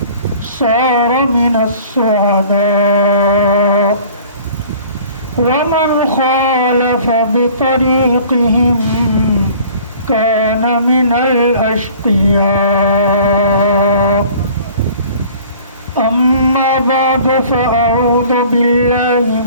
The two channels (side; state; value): both; inverted; correlation -0.49